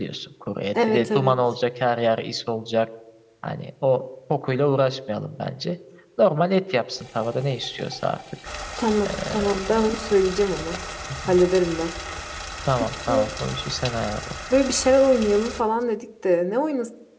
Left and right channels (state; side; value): identical; both; correlation 1.00